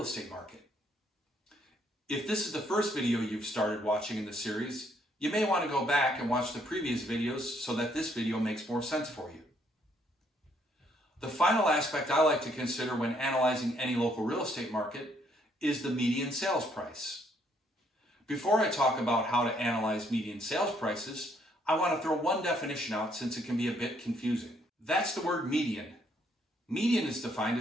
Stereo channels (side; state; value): both; normal; correlation 0.69